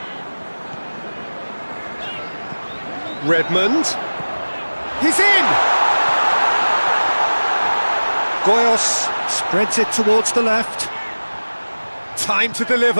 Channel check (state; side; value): inverted; both; correlation -1.00